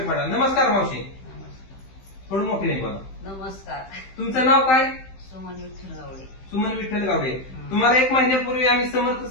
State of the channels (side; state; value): right; late; 15 ms